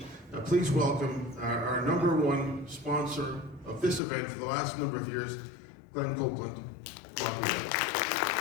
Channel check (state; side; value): drops out; right; at 4.0 s